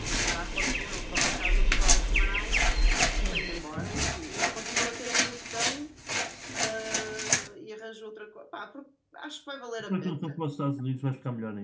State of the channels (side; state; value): both; identical; correlation 1.00